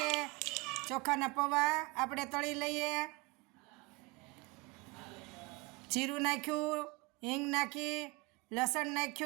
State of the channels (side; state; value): left; quieter; 25.7 dB